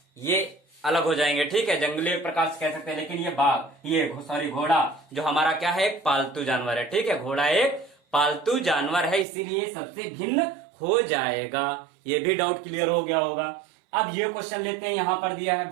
ये अलग हो जाएंगे, ठीक है, जंगली प्रकार से कह सकते हैं। लेकिन ये घोड़ा जो हमारा क्या है, एक पालतू जानवर है, ठीक है, घोड़ा एक पालतू जानवर है, इसीलिए सबसे भिन्न हो जाएगा। ये भी डाउट क्लियर हो गया होगा। अब ये क्वेश्चन लेते हैं। यहां पर दिया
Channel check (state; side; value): drops out; left; at 9.2 s